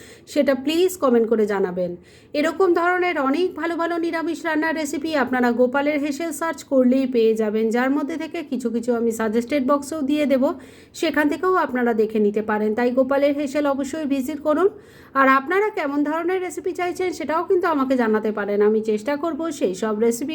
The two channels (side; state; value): both; identical; correlation 1.00